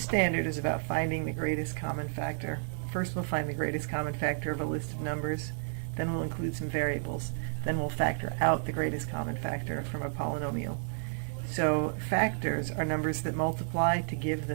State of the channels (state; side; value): silent; left; 57 dB below the other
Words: standard is about finding the greatest common factor. First we'll find the greatest common factor of a list of numbers, then we'll include some variables, then we'll factor out the greatest common factor from a polynomial. So factors are numbers that multiply to give the